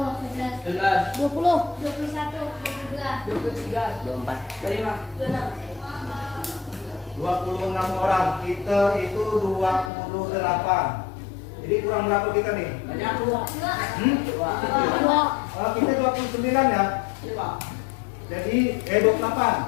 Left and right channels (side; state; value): right; drops out; at 9.9 s